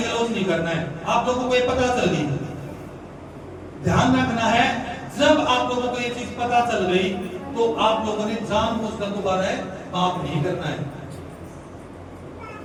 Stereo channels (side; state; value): both; identical; correlation 1.00